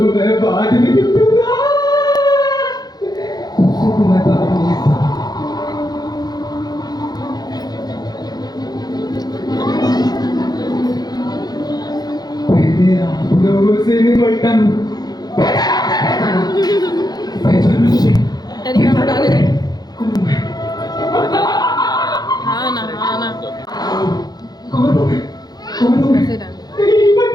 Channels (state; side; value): late; right; 0.19 ms